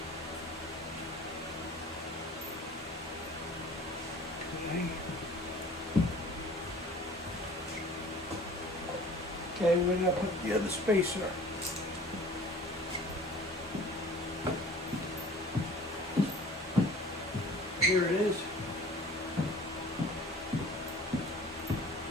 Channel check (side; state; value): both; normal; correlation 0.46